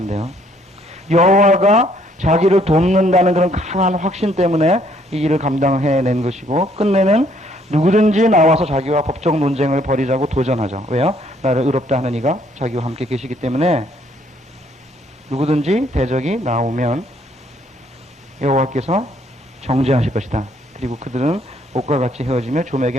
여호와가 자기를 돕는다는 그런 강한 확신 때문에 이 일을 감당해낸 것이고, 끝내는 누구든지 나와서 자기와 법적 논쟁을 벌이자고 도전하죠. 왜요? 나를 의롭다 하는 이가 자기와 함께 계시기 때문에 누구든지 대적이 나오면 여호와께서 정죄하실 것이다. 그리고 그들은 옷과 같이 헤어지며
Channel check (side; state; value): both; normal; correlation 0.66